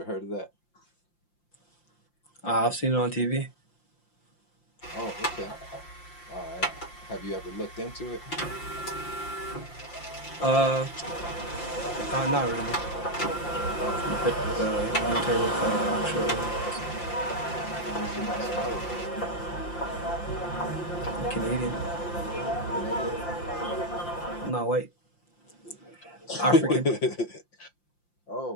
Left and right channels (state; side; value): late; right; 5.8 ms